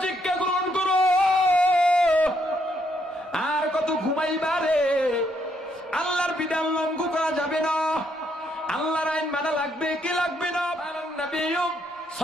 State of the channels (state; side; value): normal; both; correlation 0.74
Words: শিক্ষা গ্রহণ করো। আর কত ঘুমাইবারে? আল্লাহর বিধান লঙ্ঘন করা যাবে না, আল্লাহর আইন মানা লাগবে কি লাগবে না? নবী